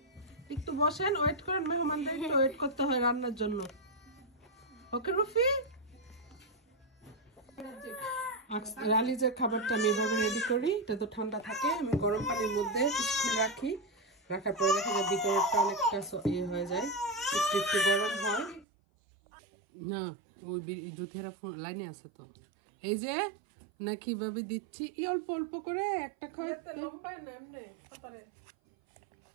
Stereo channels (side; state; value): left; drops out; at 18.7 s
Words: একটু বসেন, ওয়েট করেন, মেহমানদের একটু ওয়েট করতে হয় রান্নার জন্য। ওকে রুফি, রালিজের খাবারটা আমি এভাবে রেডি করি। এটা তো ঠান্ডা থাকে, আমি গরম পানির মধ্যে কিছুক্ষণ রাখি। রাখার পরে দেখা যায় ভিতরটা অনেকটা ইয়ে হয়ে যায়, একটু একটু গরম হয় না। ওই জুথিয়ারা লাইনে আছে তো, এই যে না কিভাবে দিচ্ছি, অল্প অল্প করে একটা